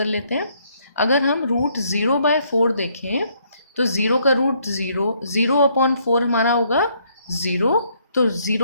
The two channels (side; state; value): both; inverted; correlation -0.69